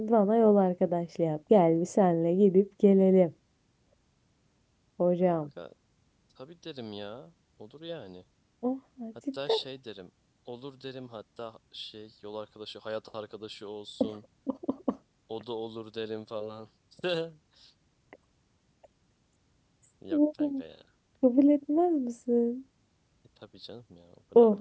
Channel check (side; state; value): both; identical; correlation 1.00